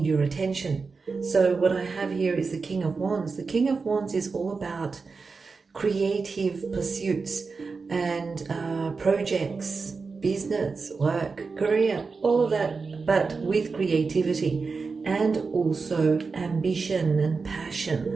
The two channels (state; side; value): quieter; left; 4.6 dB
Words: your attention. So what I have here is the King of Wands. The King of Wands is all about creative pursuits and projects, business, work, career, all of that, but with creativity and also ambition and